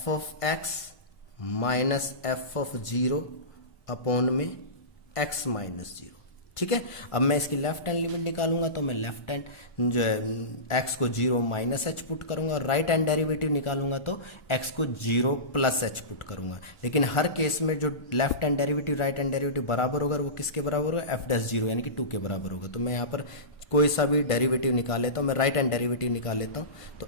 of x minus f of 0 upon में x माइनस 0. ठीक है, अब मैं इसकी लेफ्ट हैंड लिमिट निकालूंगा तो मैं लेफ्ट हैंड जो है x को 0 माइनस h पुट करूंगा और राइट हैंड डेरिवेटिव निकालूंगा तो x को 0 प्लस h पुट करूंगा. लेकिन हर केस में जो left hand derivative right hand derivative बराबर होगा वो किसके बराबर होगा, एफ डैश 0 यानी कि 2 के बराबर होगा. तो मैं यहाँ पर कोई सा भी डेरिवेटिव निकाल लेता हूँ, मैं राइट हैंड डेरिवेटिव निकाल लेता हूँ.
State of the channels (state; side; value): late; right; 1.4 ms